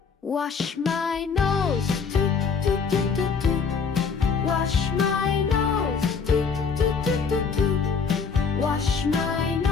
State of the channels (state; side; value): quieter; right; 5.6 dB